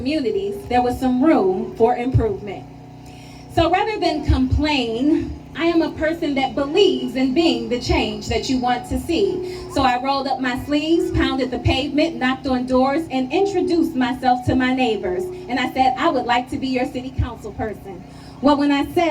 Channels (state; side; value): identical; both; correlation 1.00